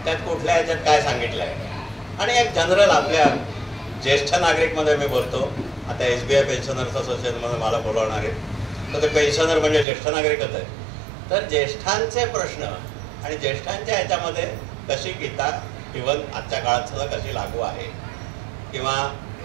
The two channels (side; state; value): left; drops out; at 9.9 s